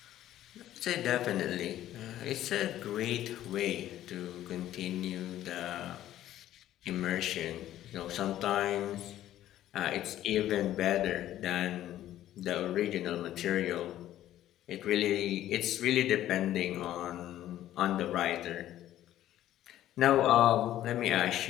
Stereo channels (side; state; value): right; quieter; 13.0 dB